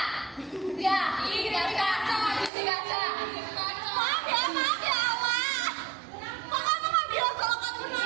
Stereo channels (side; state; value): left; drops out; at 2.5 s